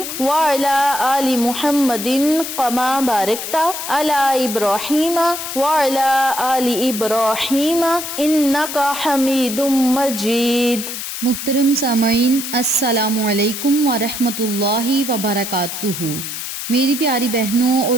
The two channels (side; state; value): left; noise; hiss, 6 dB below the sound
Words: وعلى آل محمد كما باركت على إبراهيم وعلى آل إبراهيم إنك حميد مجيد. محترم سامعین، السلام علیکم ورحمۃ اللہ وبرکاتہ۔ میری پیاری بہنوں